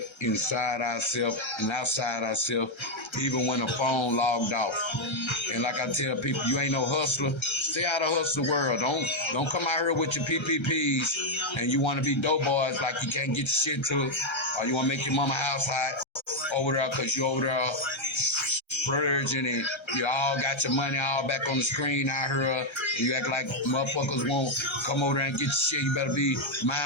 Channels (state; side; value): late; right; 1.3 ms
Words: inside ourselves and outside ourselves, even when the phone logged off. And like I tell people, you ain't no hustler. Stay out of hustle world. Don't come out here with your PPPs and you want to be dope boys like you can't get your shit to it, or you want to make your mama house hot over there because you over there splurging and you all got your money all back on the screen out here, and you act like motherfuckers won't come over there and get your shit. You better be